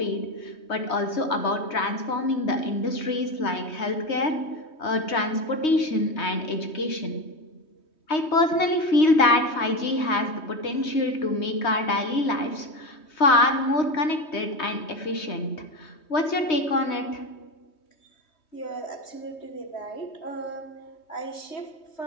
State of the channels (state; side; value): late; right; 3.2 ms